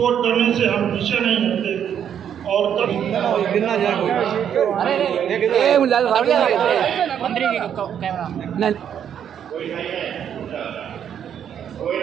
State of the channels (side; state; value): left; quieter; 8.9 dB